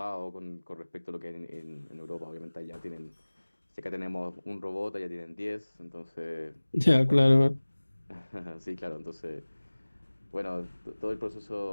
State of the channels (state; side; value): inverted; both; correlation -1.00